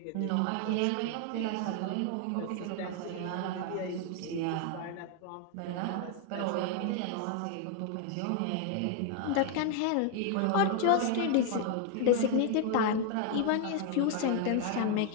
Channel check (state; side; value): different; both; correlation 0.00